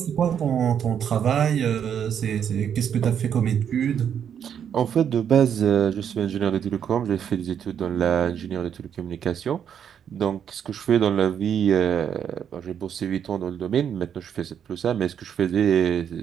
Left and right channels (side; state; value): left; quieter; 8.5 dB